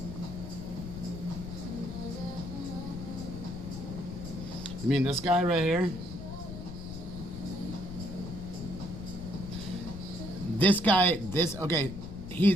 You mean this guy right here? This guy, okay,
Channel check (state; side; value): noise; left; rumble, 9 dB below the sound